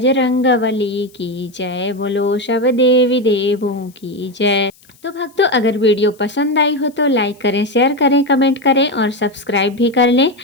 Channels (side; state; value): left; noise; hiss, 29 dB below the sound